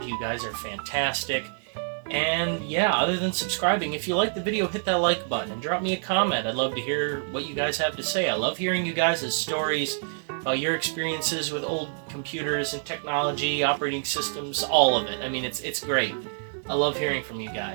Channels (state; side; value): silent; left; digital silence